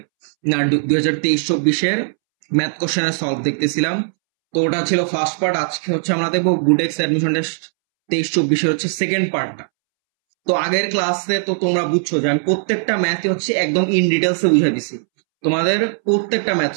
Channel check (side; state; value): left; silent; 67 dB below the other